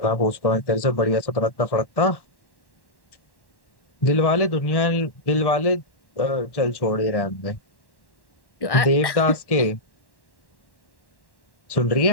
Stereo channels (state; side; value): late; right; 1.1 ms